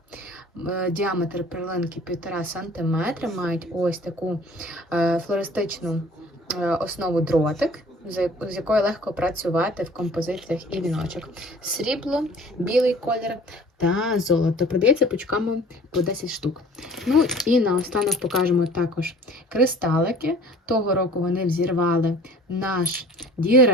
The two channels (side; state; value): both; normal; correlation 0.48